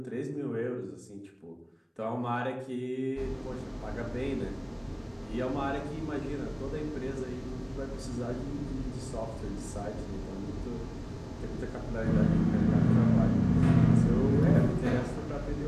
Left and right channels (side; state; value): both; identical; correlation 1.00